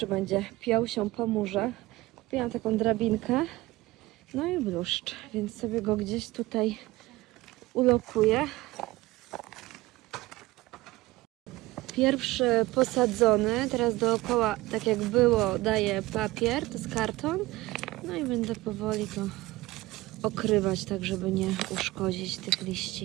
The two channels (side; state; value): left; quieter; 19.3 dB